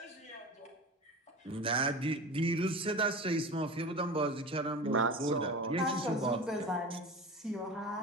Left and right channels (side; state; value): both; normal; correlation 0.32